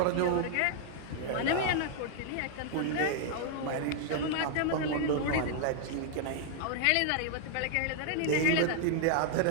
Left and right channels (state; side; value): different; both; correlation -0.01